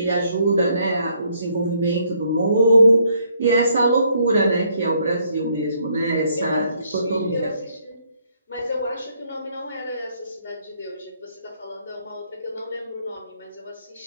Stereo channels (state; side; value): inverted; both; correlation -0.70